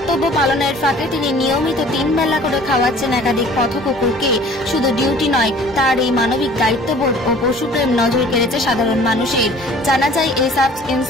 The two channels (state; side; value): normal; both; correlation 0.50